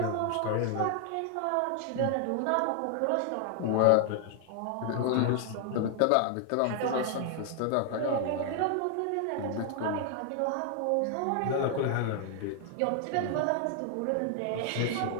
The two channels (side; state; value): both; different; correlation 0.00